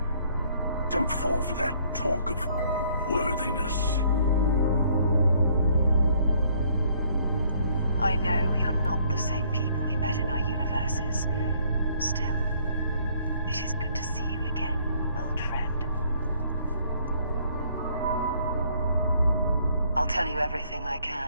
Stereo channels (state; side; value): inverted; both; correlation -0.64